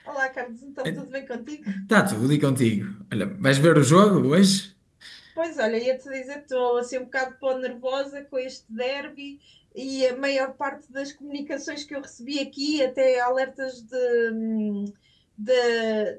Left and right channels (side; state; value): both; identical; correlation 1.00